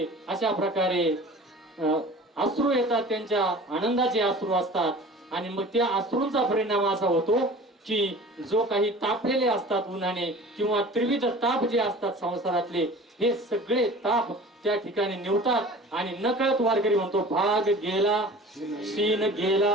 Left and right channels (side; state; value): both; normal; correlation 0.42